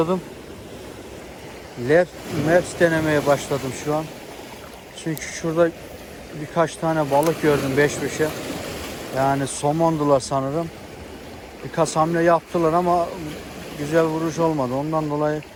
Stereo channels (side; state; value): both; identical; correlation 1.00